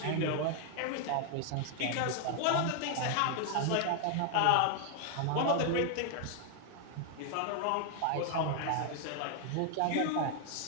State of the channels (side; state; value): both; different; correlation 0.00